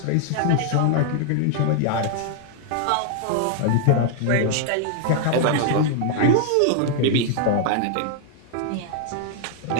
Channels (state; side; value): different; both; correlation 0.00